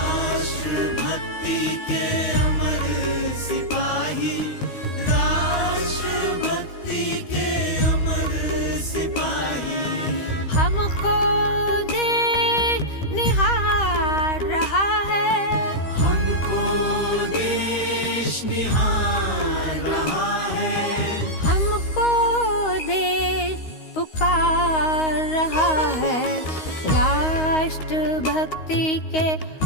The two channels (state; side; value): late; right; 13 ms